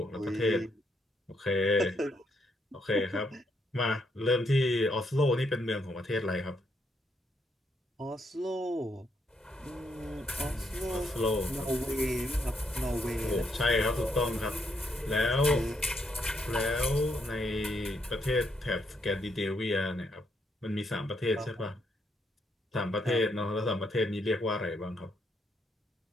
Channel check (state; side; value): normal; both; correlation 0.76